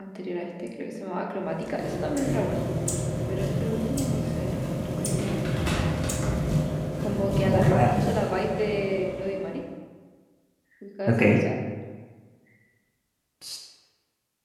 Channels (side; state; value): both; identical; correlation 1.00